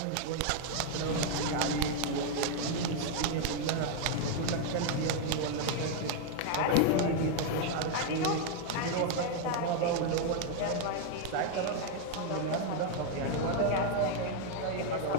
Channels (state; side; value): different; both; correlation 0.00